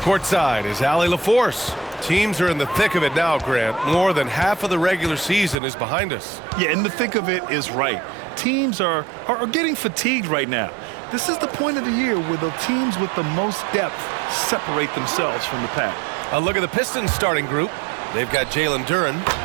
is Allie LaForce. Teams are in the thick of it now, Grant. More than half of the regular season is behind us. Yeah, in the thick of it is right. Teams are getting fatigued right now. This is the point of the year where the teams with the most depth separate themselves from the pack. A look at the Pistons starting group. They've got Jalen Duren,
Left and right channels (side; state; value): left; drops out; at 5.6 s